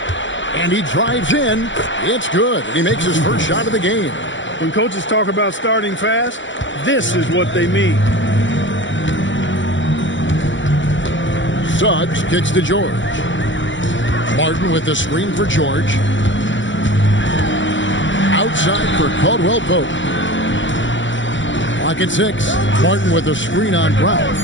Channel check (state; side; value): late; right; 0.54 ms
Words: And he drives in. It's good. He makes his first shot of the game. When coaches talk about starting fast, this is what they mean. Suggs kicks to George. Martin with the screen for George. Outside for Caldwell Pope. Clock at 6. Martin with a screen on Brown.